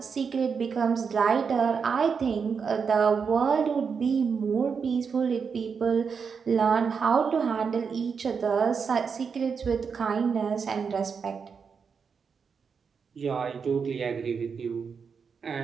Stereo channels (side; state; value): left; quieter; 6.0 dB